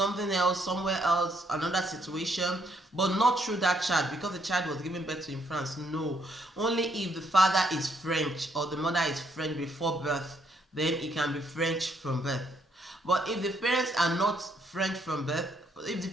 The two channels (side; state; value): both; normal; correlation 0.71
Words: else, somewhere else, another situation, but not through that child because the child was given birth to in France. No. Only if the father is French or the mother is French before birth, then it can be French from birth. But if the parents are not French from birth, if